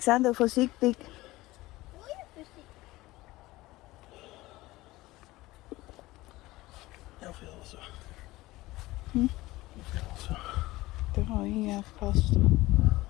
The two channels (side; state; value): right; quieter; 18.8 dB